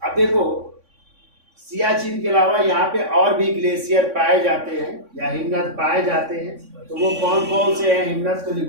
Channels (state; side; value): late; left; 3.6 ms